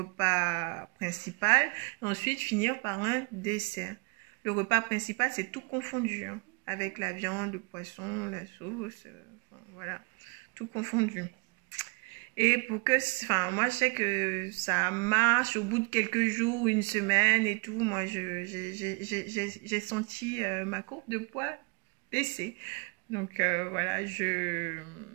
principal, et ensuite finir par un dessert. Le repas principal, c'est tout confondu, hein, avec la viande, le poisson, la sauce, voilà, tout confondu. Et pour que, moi je sais que ça marche au bout de quelques jours, une semaine et tout. Moi, j'ai senti ma courbe de poids baisser. Donc voilà, je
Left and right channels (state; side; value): quieter; left; 31.4 dB